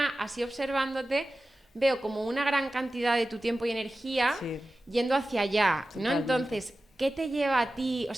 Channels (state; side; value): normal; both; correlation 0.95